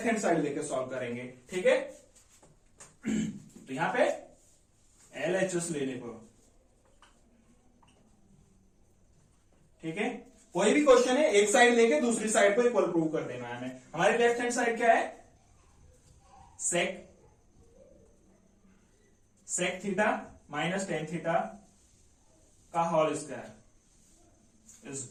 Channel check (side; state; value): both; identical; correlation 1.00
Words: हैंड साइड लेके सॉल्व करेंगे। ठीक है, तो यहां पे LHS लेने को, ठीक है, कोई भी क्वेश्चन है एक साइड लेके दूसरी साइड को इक्वल प्रूव कर देना है हमें। हमारी लेफ्ट हैंड साइड क्या है, sec theta minus tan theta का whole square is